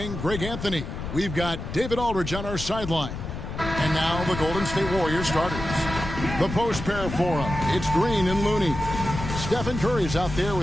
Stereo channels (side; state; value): left; noise; rumble, 7 dB below the sound